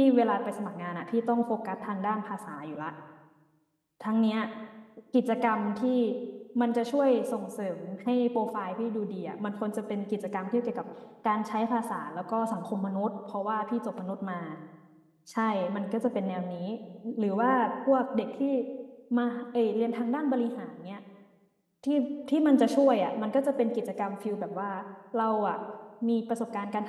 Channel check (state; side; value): identical; both; correlation 1.00